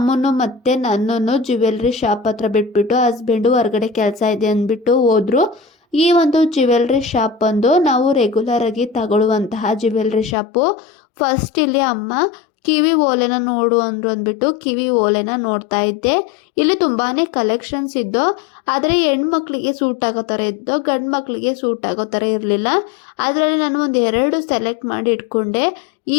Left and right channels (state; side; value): drops out; right; at 10.4 s